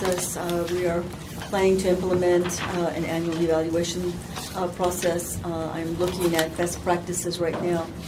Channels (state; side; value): identical; both; correlation 1.00